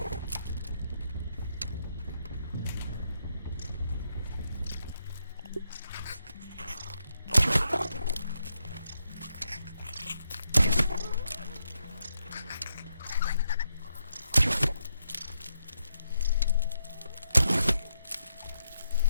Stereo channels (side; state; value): both; inverted; correlation -0.81